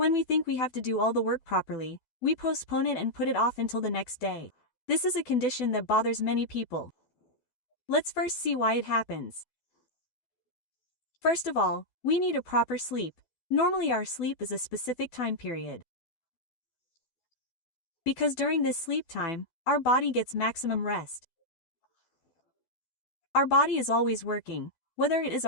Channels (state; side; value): late; right; 12 ms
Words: we think we have to do all the work properly, we postpone it and put it off until the next day. This is a condition that bothers many people. Let's first see why it happens. First of all, we need a proper sleep. Normally our sleep is a specific time period. Because during this sleep time, our body gets maximum rest. Our body is always working, whether it is